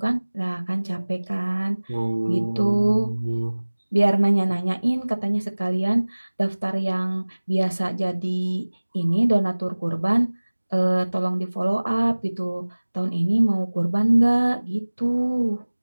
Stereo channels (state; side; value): inverted; both; correlation -1.00